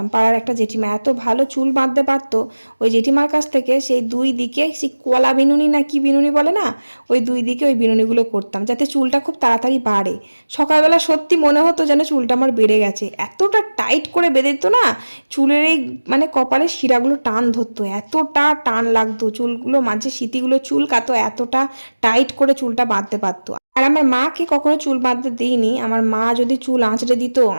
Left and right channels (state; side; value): inverted; both; correlation -1.00